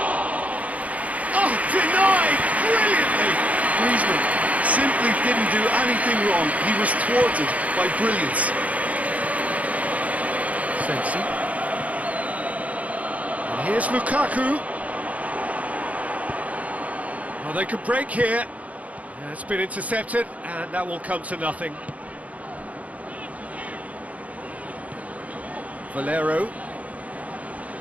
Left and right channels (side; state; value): left; late; 0.069 ms